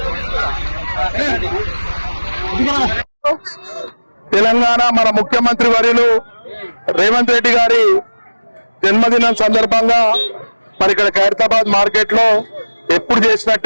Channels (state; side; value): inverted; both; correlation -1.00